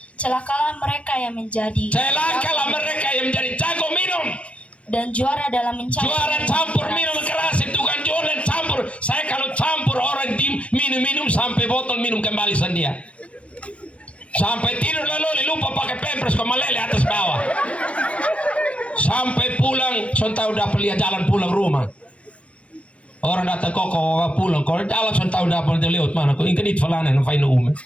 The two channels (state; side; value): late; right; 0.062 ms